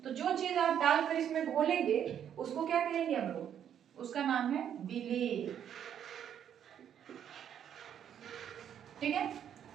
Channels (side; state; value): left; quieter; 9.3 dB